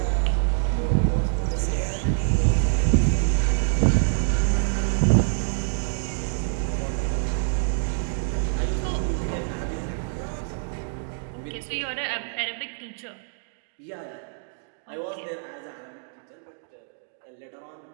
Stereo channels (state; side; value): silent; left; digital silence